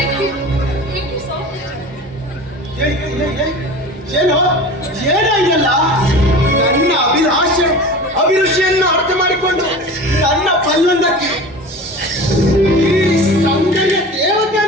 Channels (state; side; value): normal; both; correlation 0.35